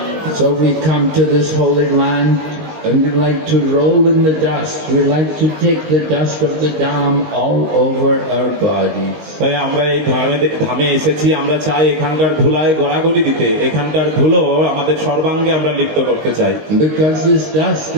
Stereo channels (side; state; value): left; late; 19 ms